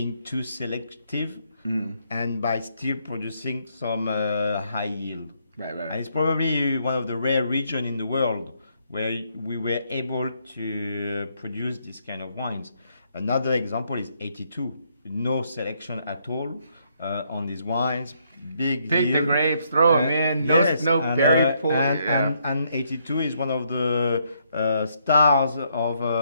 too selective and by still producing some high yield. Right. And it's probably one of the rare regions in the world where we were able to produce this kind of wines. Another example is 82. No selection at all on these wines. Big Take yield. the grapes, throw them in. No berry pull. And 82 is one of the stars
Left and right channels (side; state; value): both; inverted; correlation -0.73